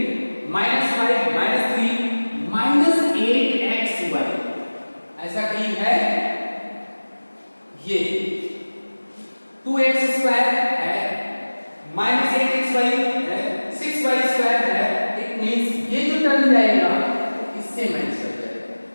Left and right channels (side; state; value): both; inverted; correlation -1.00